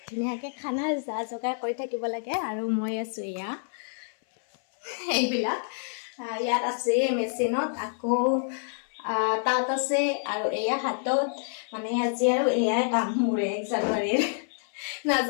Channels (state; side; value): silent; right; 60 dB below the other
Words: ধুনীয়াকৈ খানাৰ যা যোগাৰ কৰি থাকিব লাগে আৰু মই আছোঁ এয়া এইবিলাক ইয়াত আছে মেচিনত আকৌ তাত আছে আৰু এয়া হাতত মানে আজি আৰু এয়াই কাম মোৰ 1 জানুৱাৰীৰ